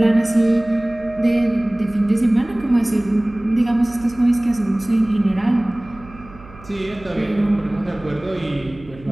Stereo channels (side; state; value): right; noise; hum, 21 dB below the sound